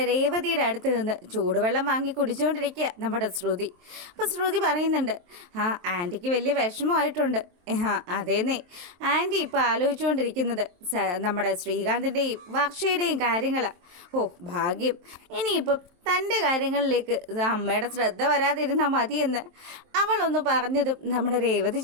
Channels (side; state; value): left; late; 23 ms